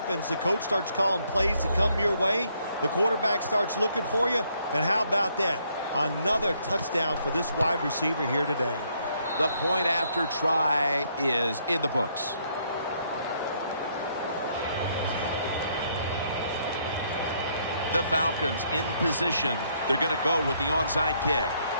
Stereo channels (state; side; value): inverted; both; correlation -0.70